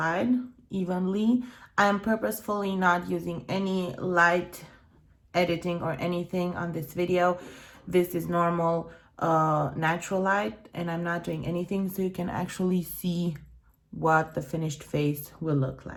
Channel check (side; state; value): both; identical; correlation 1.00